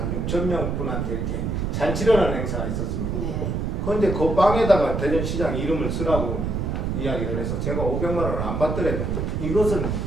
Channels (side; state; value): right; noise; rumble, 1 dB below the sound